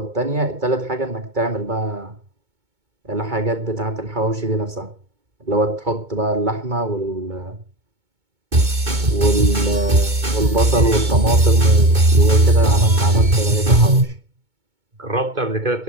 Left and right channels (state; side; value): late; left; 2.2 ms